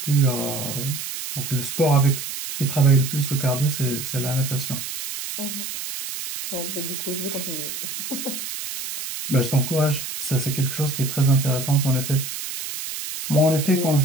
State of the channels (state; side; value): noise; right; hiss, 7 dB below the sound